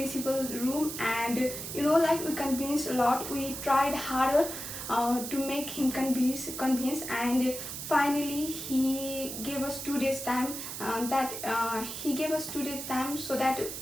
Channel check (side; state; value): right; noise; hiss, 7 dB below the sound